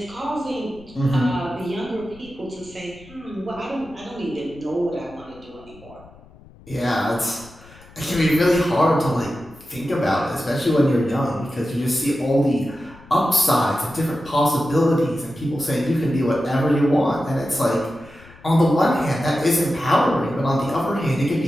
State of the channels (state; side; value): noise; left; rumble, 23 dB below the sound